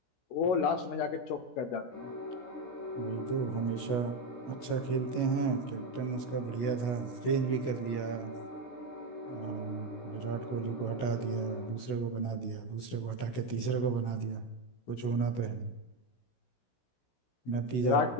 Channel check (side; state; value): right; late; 16 ms